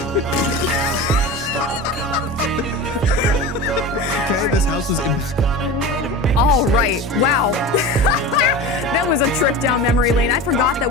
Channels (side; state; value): both; normal; correlation 0.30